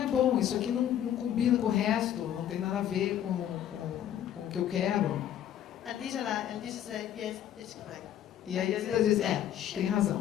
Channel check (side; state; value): right; quieter; 10.7 dB